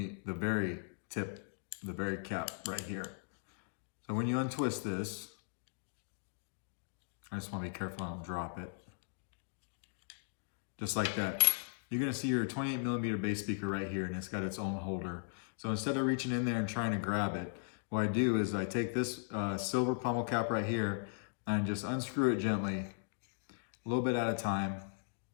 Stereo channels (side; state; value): right; silent; digital silence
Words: very tip, the very cap right here. So when you untwist this, I just want to be careful I don't drop it. Just like that. You're gonna see your 28mm bass speaker right here, and it's got its own holder. So instead of reaching in there and trying to grab it, what I do is I take this silver pummel cap right here and just unscrew it gently, a little bit at a time.